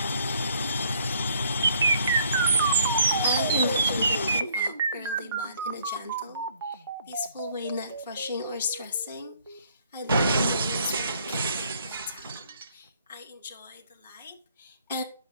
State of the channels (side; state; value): both; inverted; correlation -0.63